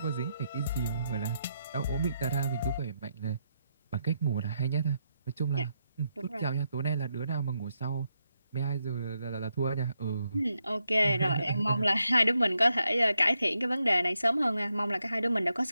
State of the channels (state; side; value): inverted; both; correlation -0.82